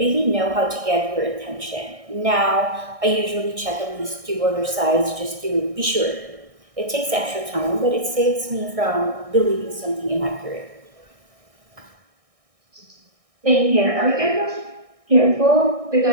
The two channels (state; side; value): late; left; 1.6 ms